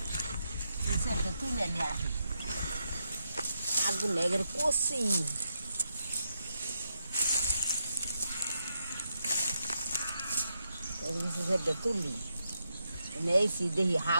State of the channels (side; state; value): both; inverted; correlation -0.83